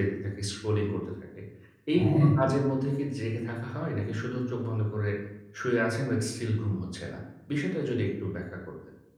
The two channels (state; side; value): identical; both; correlation 1.00